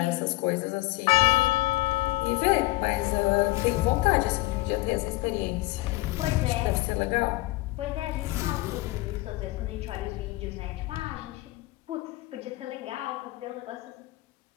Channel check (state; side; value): quieter; right; 19.8 dB